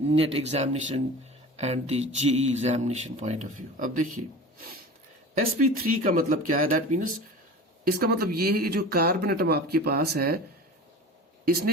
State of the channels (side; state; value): both; normal; correlation 0.36